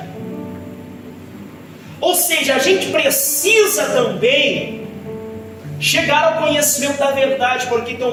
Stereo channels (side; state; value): both; identical; correlation 1.00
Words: Ou seja, a gente precisa também chegar ao conhecimento da verdade, porque tem